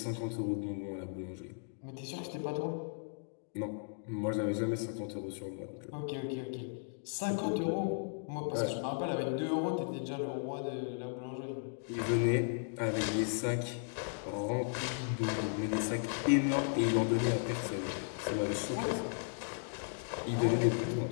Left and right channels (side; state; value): right; silent; digital silence